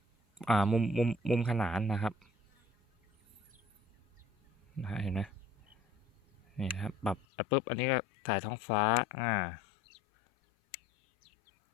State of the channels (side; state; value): right; drops out; at 7.2 s